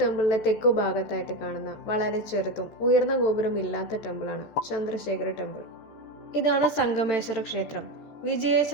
തെക്കു ഭാഗത്തായിട്ട് കാണുന്ന വളരെ ചെറുതും ഉയർന്ന ഗോപുരം ഇല്ലാത്ത ടെമ്പിളാണ് ചന്ദ്രശേഖര ടെമ്പിൾ. ഇതാണ് സംഗമേശ്വര ക്ഷേത്രം.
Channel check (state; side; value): late; right; 13 ms